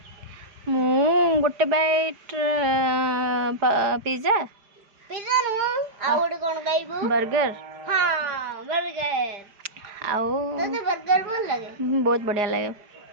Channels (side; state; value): left; late; 5.0 ms